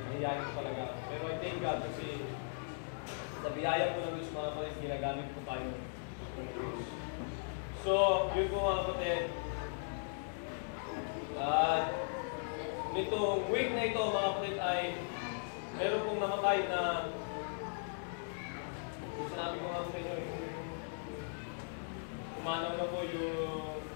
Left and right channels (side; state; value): right; silent; digital silence